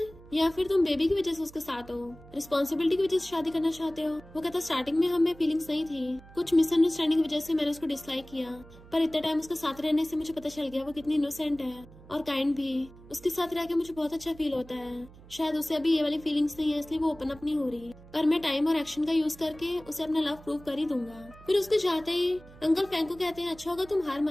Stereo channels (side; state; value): right; noise; hum, 21 dB below the sound